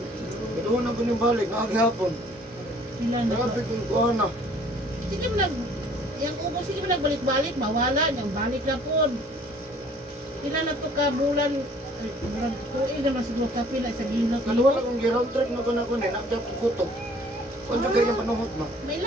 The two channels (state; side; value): normal; both; correlation 0.56